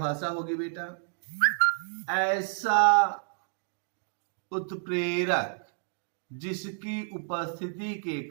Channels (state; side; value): silent; left; digital silence